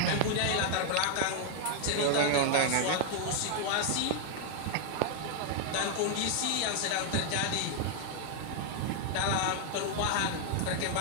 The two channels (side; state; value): both; different; correlation 0.00